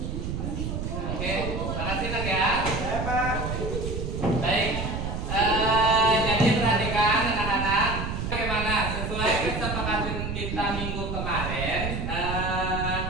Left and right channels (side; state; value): right; noise; rumble, 3 dB below the sound